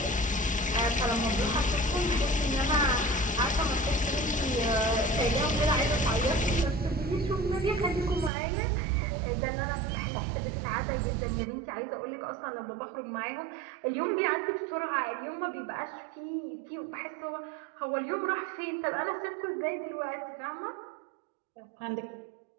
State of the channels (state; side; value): drops out; left; at 8.3 s